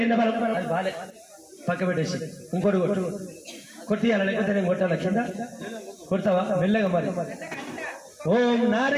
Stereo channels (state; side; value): identical; both; correlation 1.00